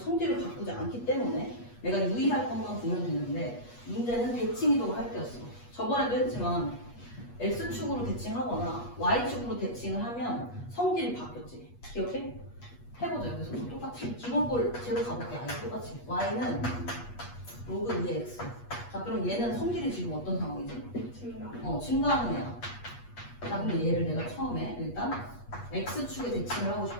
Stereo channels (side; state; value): right; late; 8.3 ms